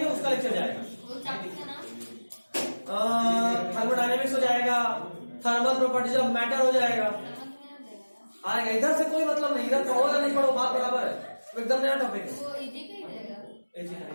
है उसका लेक्चर जाएगा। वो चैप्टर का नाम थर्मोडायनेमिक्स हो जाएगा, थर्मल प्रॉपर्टीज ऑफ मैटर हो जाएगा, आएगा। इधर से कोई मतलब नहीं, इधर पढ़ो या नहीं पढ़ो बात बराबर है, एकदम नया टॉपिक है। वो इजी का ही रहेगा,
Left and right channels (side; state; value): both; inverted; correlation -1.00